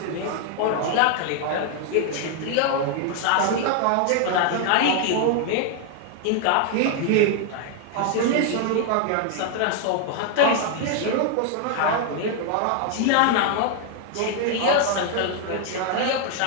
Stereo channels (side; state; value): both; different; correlation 0.01